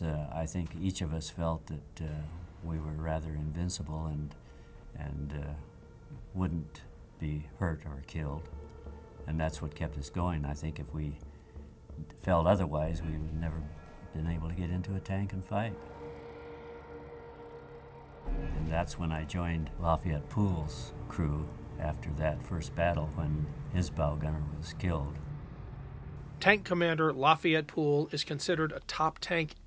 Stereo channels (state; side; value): identical; both; correlation 1.00